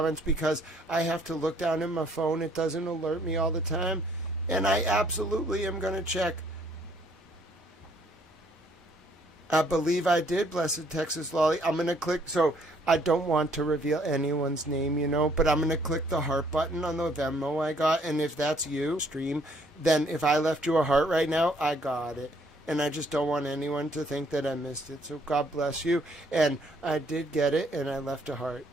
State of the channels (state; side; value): normal; both; correlation 0.64